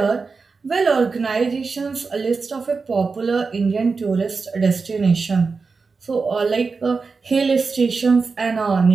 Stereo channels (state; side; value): quieter; left; 4.6 dB